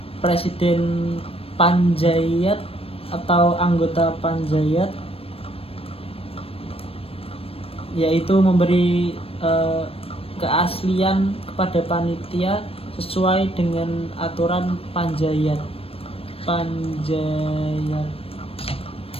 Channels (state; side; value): late; right; 0.28 ms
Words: presiden panjayat atau anggota panjayat, yaitu memberi keaslian kepada panitia sesuai dengan aturan panjayat.